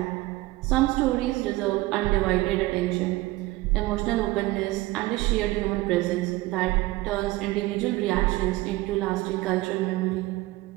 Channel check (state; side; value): quieter; left; 19.4 dB